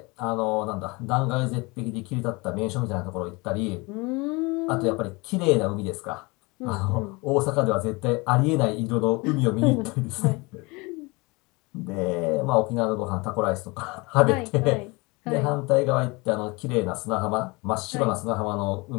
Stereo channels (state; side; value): quieter; right; 25.9 dB